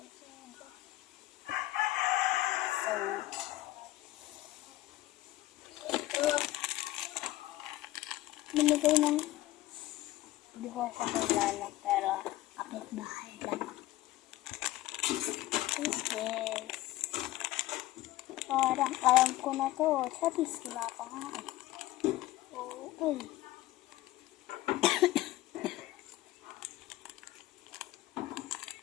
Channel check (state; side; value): quieter; right; 16.2 dB